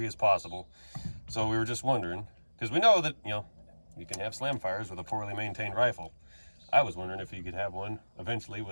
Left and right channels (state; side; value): inverted; both; correlation -1.00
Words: as possible. So we were just wondering, because we know that, you know, you can have slam fires with a poorly maintained rifle. I was wondering if you could have one eventually